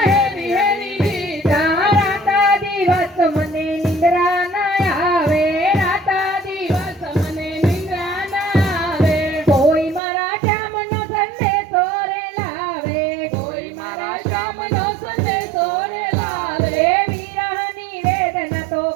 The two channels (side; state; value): left; drops out; at 10.0 s